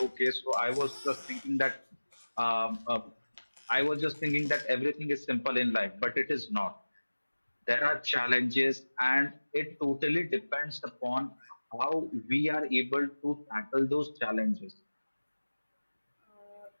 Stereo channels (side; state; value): both; inverted; correlation -1.00